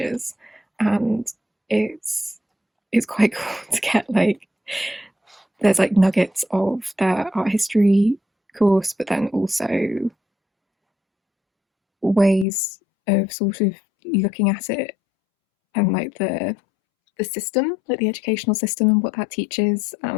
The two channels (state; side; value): drops out; right; at 12.5 s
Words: and it's quite cool to get like there's like nuggets of their art history course, but then also ways of sort of looking at it and like the system, like the educational system and what that teaches,